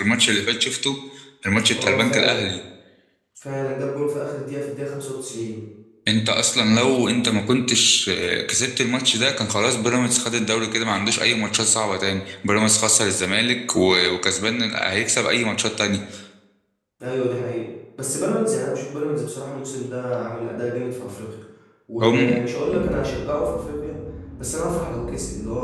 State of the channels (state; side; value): identical; both; correlation 1.00